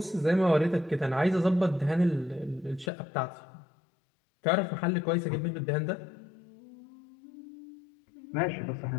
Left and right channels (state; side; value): drops out; right; at 2.9 s